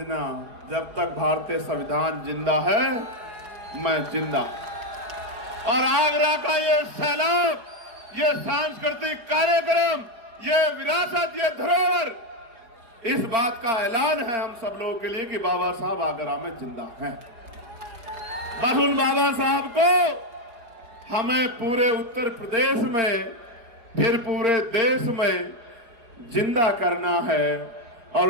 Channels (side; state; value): left; late; 4.8 ms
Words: जब तक भारतीय संविधान जिंदा है मैं जिंदा। और आगरा का ये सैलाब, ये सांस्कृतिक कार्यक्रम, ये विरासत, ये धरोहर, इस बात का ऐलान है हम सब लोगों के लिए कि बाबा साहब आगरा में जिंदा हैं। बस उन बाबा साहब को हमें पूरे उत्तर प्रदेश में, फिर पूरे देश में जिंदा करना है और